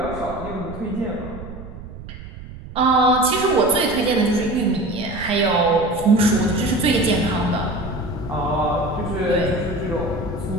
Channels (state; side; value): noise; right; rumble, 13 dB below the sound